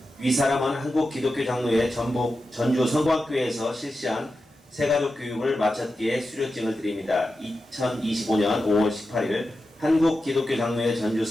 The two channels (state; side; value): normal; both; correlation 0.91